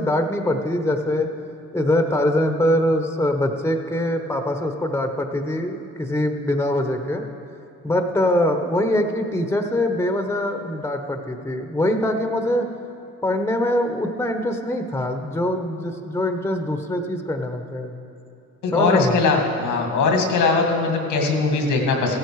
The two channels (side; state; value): both; normal; correlation 0.54